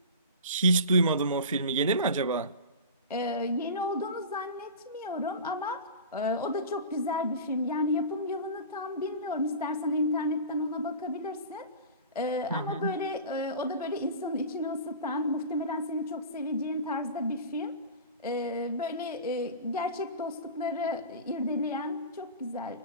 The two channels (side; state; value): both; inverted; correlation -0.33